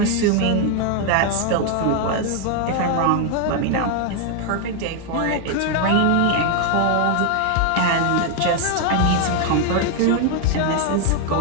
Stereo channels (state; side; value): different; both; correlation 0.00